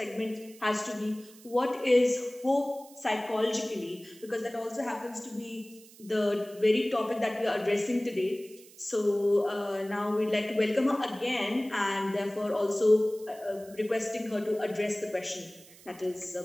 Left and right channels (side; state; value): right; noise; hiss, 22 dB below the sound